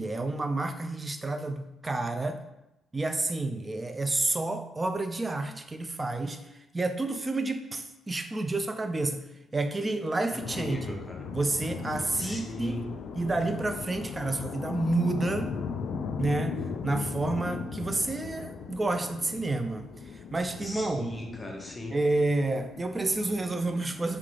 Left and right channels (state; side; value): normal; both; correlation 0.89